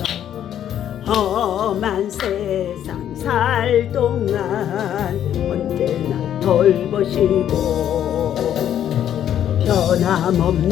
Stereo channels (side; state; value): right; quieter; 10.4 dB